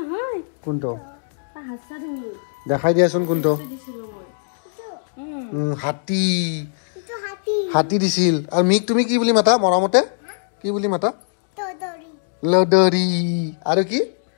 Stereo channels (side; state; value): right; silent; digital silence